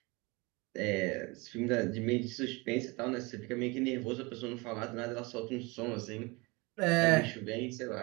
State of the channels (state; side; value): quieter; left; 26.0 dB